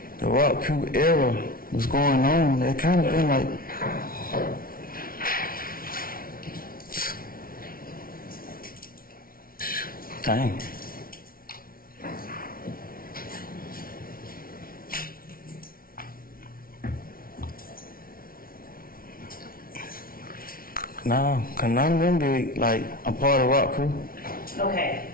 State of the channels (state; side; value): late; right; 0.43 ms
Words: the Rock Crew era was going on. They kind of been like, dang. No, cause none of them be like a part of Rock Crew. Okay,